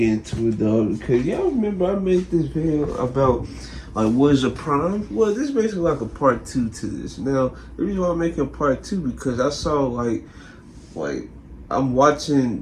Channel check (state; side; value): identical; both; correlation 1.00